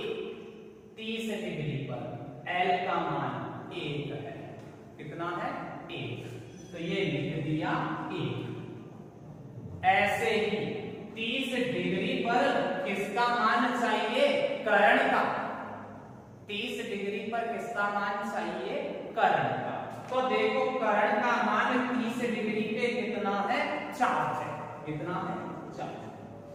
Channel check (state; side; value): identical; both; correlation 1.00